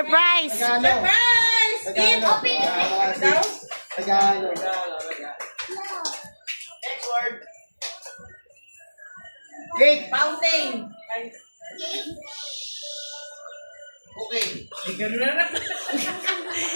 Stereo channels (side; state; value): both; inverted; correlation -1.00